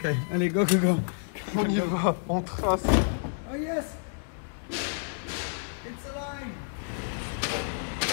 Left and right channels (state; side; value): silent; right; digital silence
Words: allez, go. On y va, on trace. Oh yes! It's alive!